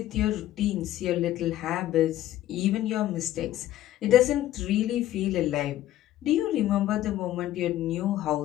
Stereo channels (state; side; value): quieter; right; 13.6 dB